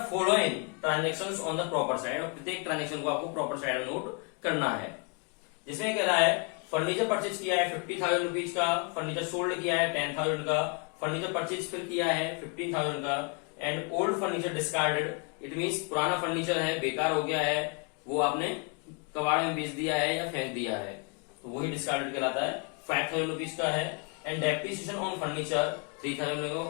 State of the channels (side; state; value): right; quieter; 35.1 dB